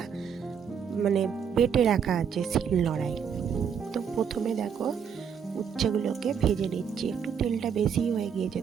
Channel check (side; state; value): left; quieter; 7.4 dB